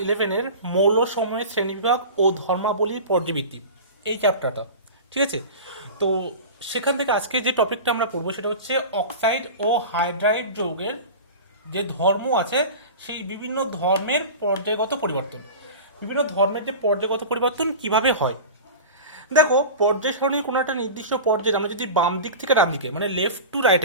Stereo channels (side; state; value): both; inverted; correlation -0.32